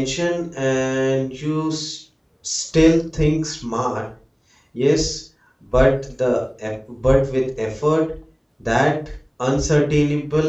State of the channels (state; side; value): identical; both; correlation 1.00